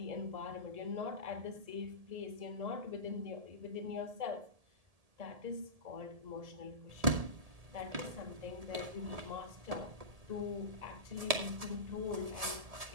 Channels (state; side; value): late; left; 1.7 ms